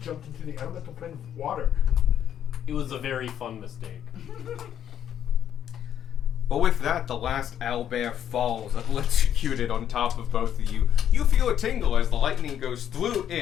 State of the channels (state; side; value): quieter; right; 9.8 dB